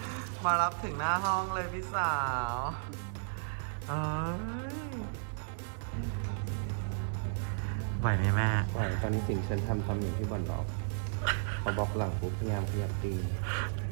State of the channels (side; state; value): left; silent; digital silence